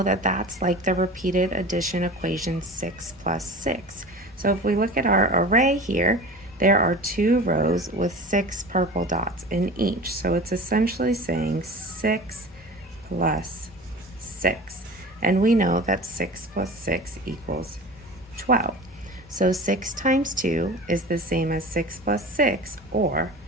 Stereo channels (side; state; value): both; normal; correlation 0.36